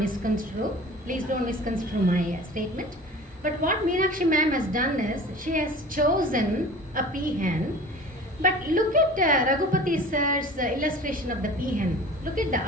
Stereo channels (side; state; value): both; normal; correlation 0.41